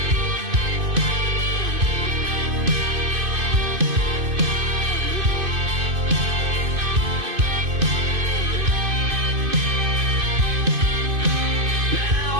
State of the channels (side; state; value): left; late; 2.5 ms